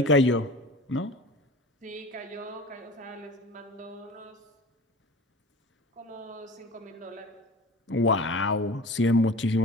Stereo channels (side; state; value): both; normal; correlation 0.37